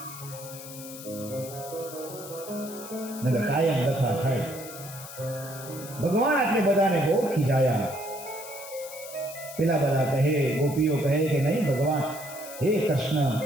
કાયમ દફા થાય. ભગવાન આટલે બધાને બહુ ખીજાયા. પેલા બધા કહે, ગોપીઓ કહે કે નહીં ભગવાન, હે કૃષ્ણ,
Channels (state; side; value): noise; left; hiss, 13 dB below the sound